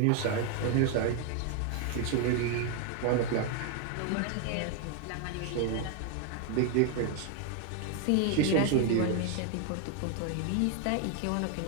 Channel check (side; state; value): both; different; correlation 0.01